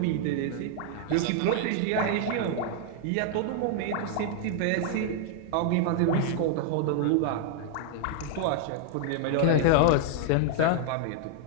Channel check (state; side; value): different; both; correlation 0.00